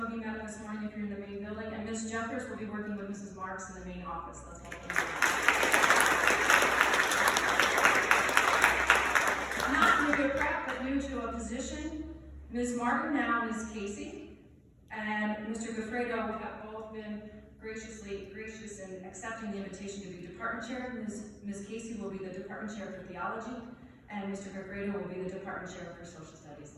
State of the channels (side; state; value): both; identical; correlation 1.00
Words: of you met him this morning if you're in the main building, and Ms. Jeffers will be working with Mrs. Marks in the main office. Let's welcome them. Not new to prep, but new to a position. Ms. Martin now is Catie. And Mr. Goffredo have both been gracious in accepting the invitation to be department chair. Ms. Catie will be the department chair for Theology, and Mr. Goffredo will be the department chair for Social Studies.